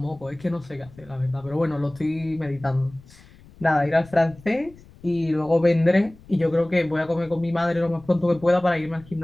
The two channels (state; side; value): noise; left; rumble, 23 dB below the sound